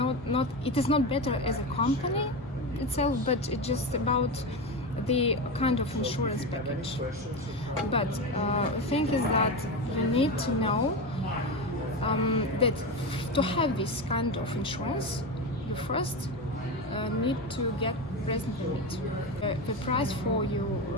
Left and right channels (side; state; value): both; normal; correlation 0.19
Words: It is not better as a company itself, but it's just about the kind of insurance package. But the thing is that you need to know that to have this kind of insurance, you first need to get resident permit. The price for